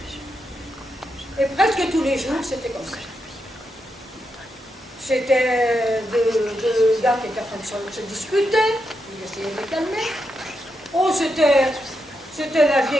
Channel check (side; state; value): both; normal; correlation 0.84